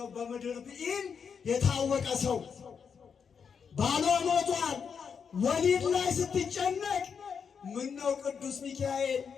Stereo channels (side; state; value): right; quieter; 6.5 dB